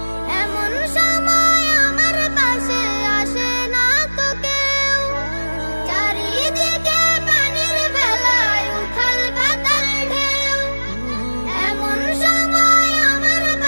এমন সময় আমার পাশে আসে না তো কেউ। চারিদিকে পানির ভেলায় উথাল পাতাল ঢেউ, এমন সময় আমার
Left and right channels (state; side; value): inverted; both; correlation -1.00